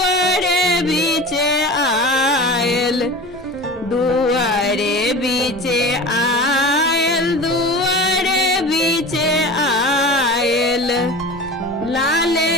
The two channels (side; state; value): both; normal; correlation 0.35